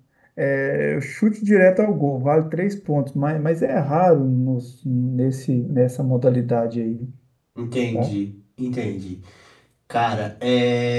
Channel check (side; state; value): both; identical; correlation 1.00